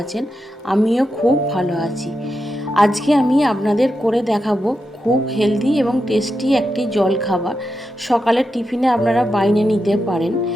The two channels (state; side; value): normal; both; correlation 0.87